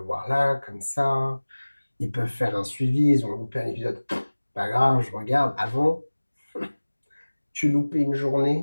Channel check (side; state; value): both; inverted; correlation -1.00